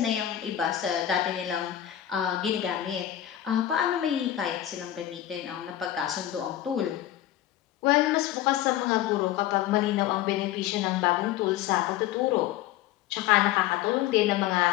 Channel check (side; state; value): right; quieter; 12.4 dB